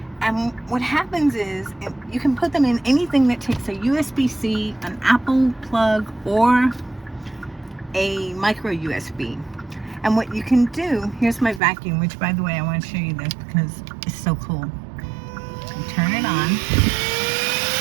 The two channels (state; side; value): drops out; left; at 11.6 s